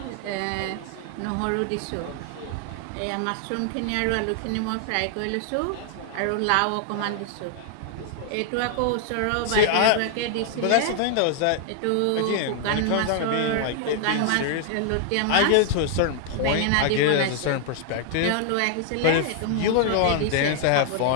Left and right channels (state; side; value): different; both; correlation 0.00